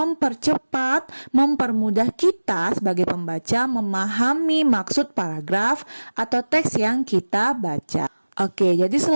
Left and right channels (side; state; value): both; inverted; correlation -1.00